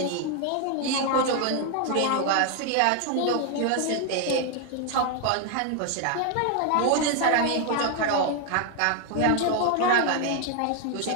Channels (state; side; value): different; both; correlation 0.00